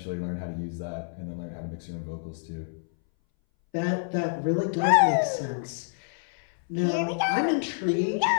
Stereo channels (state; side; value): silent; right; 60 dB below the other